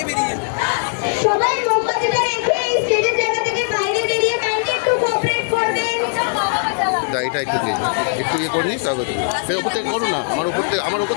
বেরিয়ে সবাই মোমবাতিটা রেখে স্টেজের জায়গা থেকে বাইরে বেরিয়ে কাইন্ডলি একটু কোঅপারেট করবেন। এটা একটু ইয়ে করে নিস, তারপরে ফের ওপর থেকে করো না, আমার উপর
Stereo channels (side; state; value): right; silent; digital silence